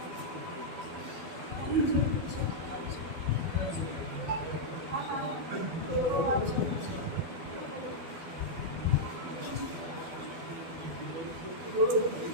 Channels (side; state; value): left; late; 12 ms